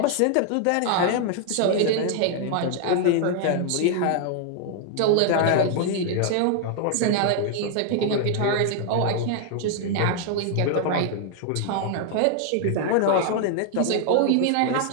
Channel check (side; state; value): both; different; correlation 0.00